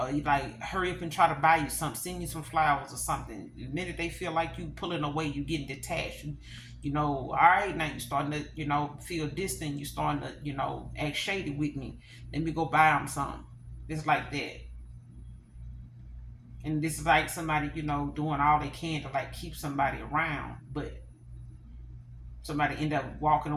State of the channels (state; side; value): identical; both; correlation 1.00